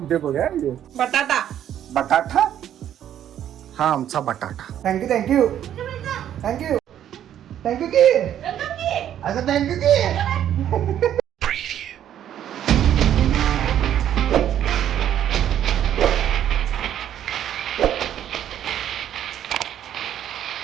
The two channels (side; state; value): left; quieter; 10.6 dB